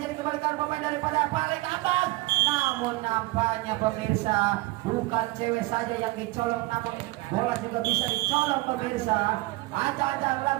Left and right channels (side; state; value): left; quieter; 21.4 dB